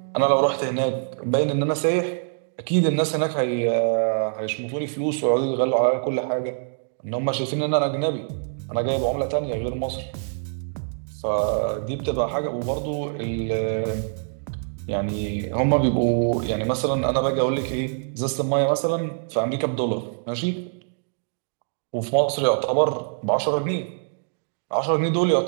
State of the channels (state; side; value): silent; left; digital silence